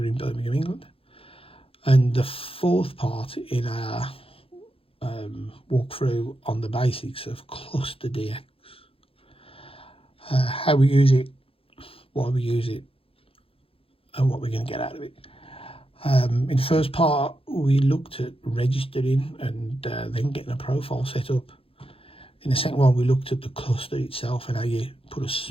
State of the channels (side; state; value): right; late; 0.27 ms